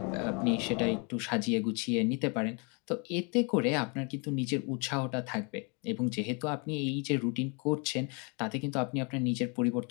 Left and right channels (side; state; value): right; quieter; 33.6 dB